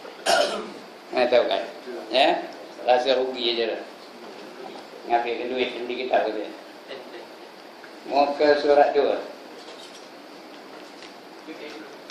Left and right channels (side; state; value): both; identical; correlation 1.00